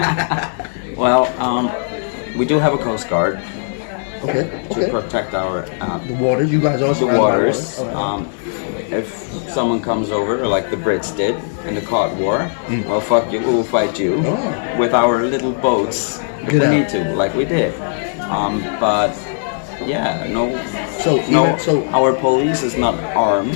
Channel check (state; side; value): silent; right; digital silence